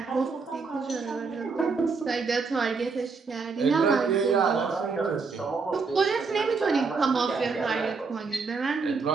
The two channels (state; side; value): quieter; left; 4.7 dB